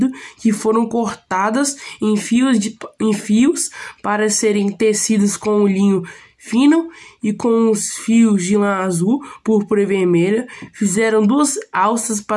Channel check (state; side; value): identical; both; correlation 1.00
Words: que foram cortadas em fios para serem tecidas com o linho fino e com os fios de lã azul, púrpura e vermelha. Fizeram 2 alças